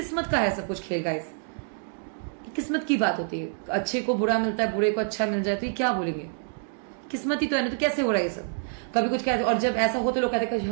का है सब कुछ खेल गाइस। किस्मत की बात होती है, अच्छे को बुरा मिलता है, बुरे को अच्छा मिल जाए, तो ये क्या बोलेंगे? किस्मत ही तो है ना, तो कैसे हो रहा है ये सब? कभी कुछ कहते, और जब ऐसा हो तो लोग कहते हैं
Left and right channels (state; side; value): silent; left; 60 dB below the other